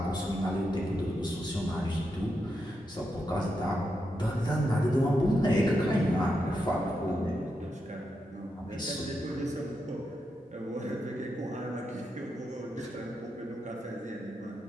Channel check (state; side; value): normal; both; correlation 0.85